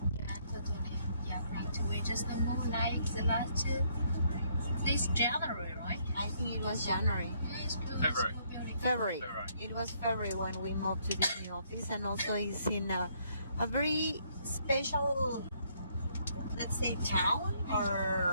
Yeah, totally. Yeah, right. We just moved like the last this January, right? I think it was January. February. It was February when we moved to this new office, and also it's in a very special, let's say, town,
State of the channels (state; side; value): inverted; both; correlation -0.70